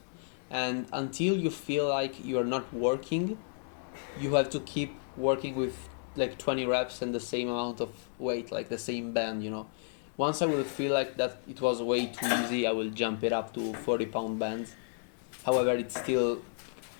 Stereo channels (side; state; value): right; silent; 56 dB below the other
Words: and until you feel like you are not working, you have to keep working with like 20 reps and the same amount of weight, like the same band, you know. Once I will feel like that it was way too easy, I will jump it up to 40-pound bands. However, it's still